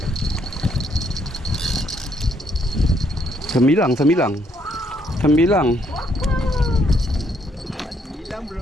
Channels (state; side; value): normal; both; correlation 0.71